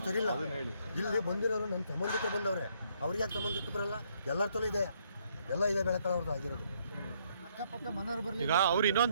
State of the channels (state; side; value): inverted; both; correlation -0.70